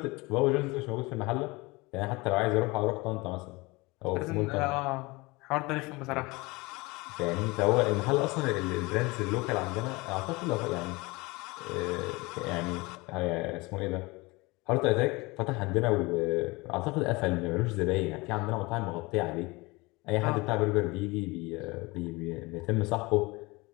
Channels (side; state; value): right; quieter; 24.1 dB